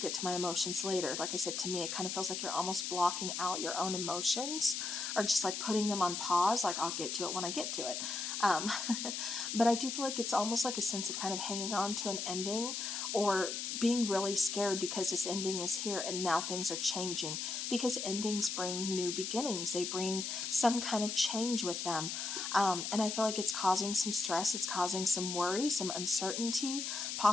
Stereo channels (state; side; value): noise; left; hiss, 3 dB below the sound